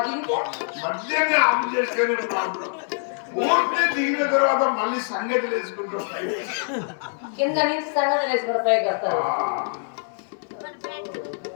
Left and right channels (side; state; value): right; silent; digital silence